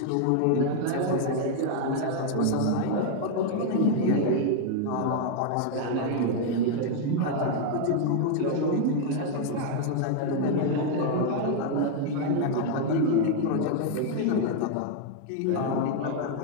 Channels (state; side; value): different; both; correlation 0.00